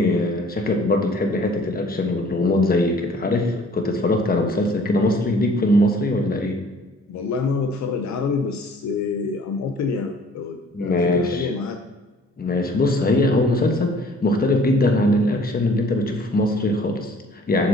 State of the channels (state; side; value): normal; both; correlation 0.54